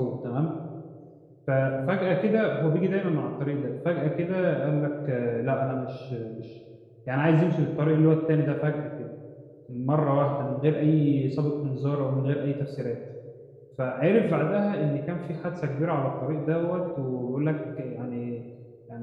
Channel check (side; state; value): both; identical; correlation 1.00